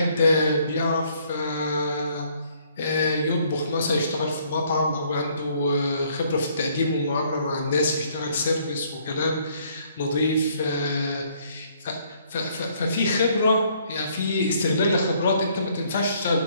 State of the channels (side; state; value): both; inverted; correlation -0.65